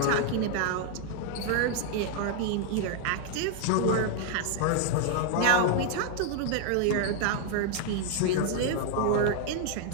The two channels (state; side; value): different; both; correlation 0.00